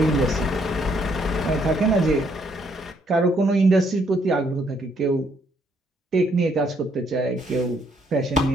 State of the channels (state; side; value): normal; both; correlation 0.70